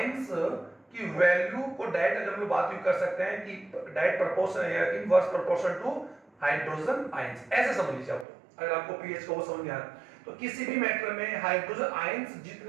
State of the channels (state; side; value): drops out; left; at 8.2 s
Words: की वैल्यू को डायरेक्ट अगर हम लोग बात कर सकते हैं कि डायरेक्ट प्रोपोर्शन या inverse proportion to hydrogen ions, ऐसे समझ लीजिए आप। तो अगर आपको pH को वो समझ में आ रहा तो किसी भी मैटर में हाइड्रोजन आयंस